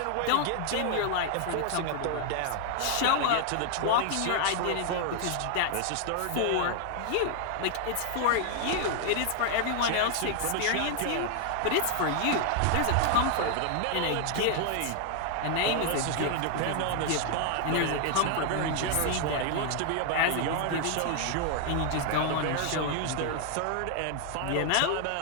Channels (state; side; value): different; both; correlation 0.00